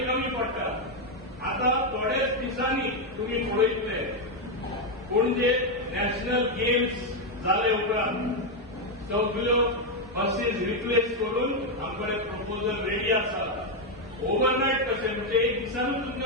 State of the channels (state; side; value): normal; both; correlation 0.03